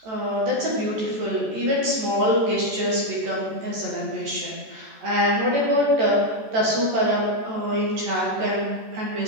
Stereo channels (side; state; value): left; late; 14 ms